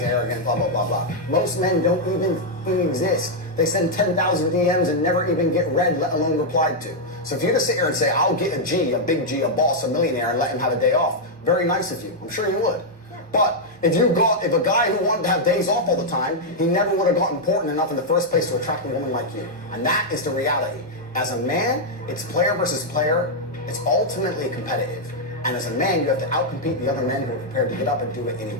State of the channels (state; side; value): normal; both; correlation -0.03